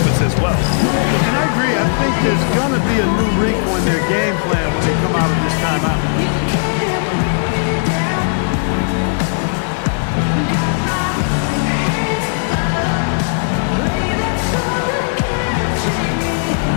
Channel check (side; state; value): right; silent; 56 dB below the other